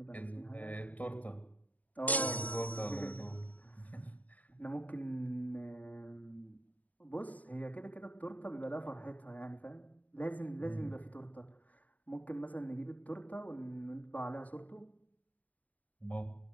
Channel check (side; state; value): right; late; 0.073 ms